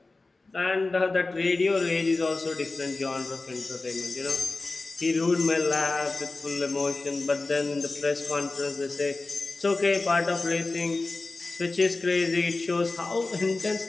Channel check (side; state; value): right; quieter; 3.4 dB